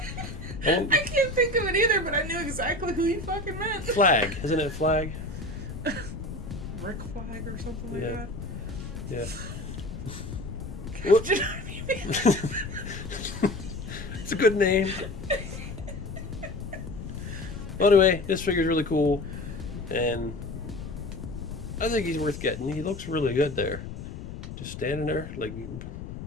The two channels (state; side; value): noise; left; rumble, 9 dB below the sound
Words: I can't think of it either, but I knew exactly who you fucking meant. Flag, isn't it Flag? Rick Flag or something like Yeah. that. Yeah. Captain Army Man. It's a good name. Well, anyway, this figure's really cool, and I think he's worth getting. He looks really good there, just standing there. Like,